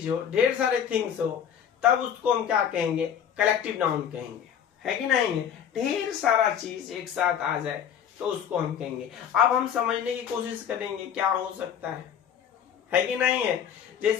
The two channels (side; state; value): right; quieter; 8.6 dB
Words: हो, ढेर सारे थिंग्स हो, तब उसको हम क्या कहेंगे? कलेक्टिव नाउन कहेंगे, है कि नहीं? ढेर सारा चीज एक साथ आ जाए तो उसको हम कहेंगे। अब हम समझने की कोशिश करेंगे क्या हो सकता है कि नहीं है?